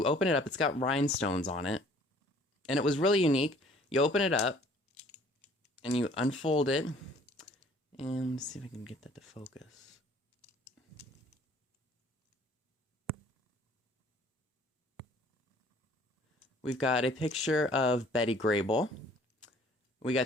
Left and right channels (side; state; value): both; normal; correlation 0.55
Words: open it up, it's got rhinestones on it. And it was really unique. You open it up, and you unfold it. And let's see if I can get that to focus. We've got a picture of Betty Grable. We